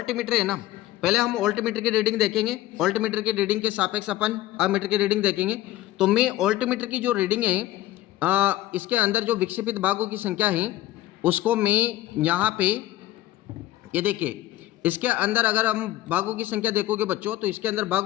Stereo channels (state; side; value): quieter; right; 15.4 dB